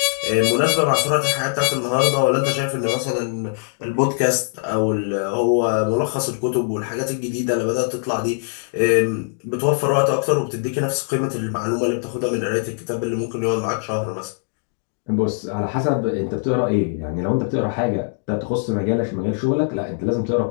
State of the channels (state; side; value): silent; right; digital silence